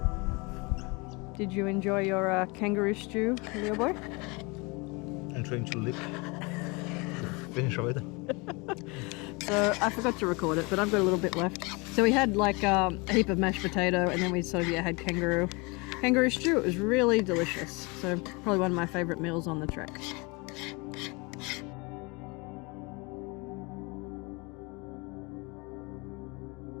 Did you enjoy your kangaroo stew, Leo boy? I'm trying to lick. Finish already. So I forgot to record it, but I've got a little bit left. So we had like a heap of mashed potato, and then we sort of had kangaroo stew. It was really delicious. So probably one of my favourite meals on the trek.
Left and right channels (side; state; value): right; quieter; 27.9 dB